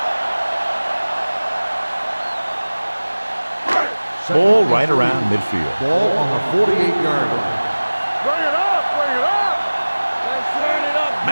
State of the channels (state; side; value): inverted; both; correlation -1.00